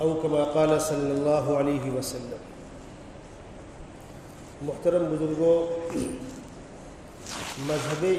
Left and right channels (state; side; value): identical; both; correlation 1.00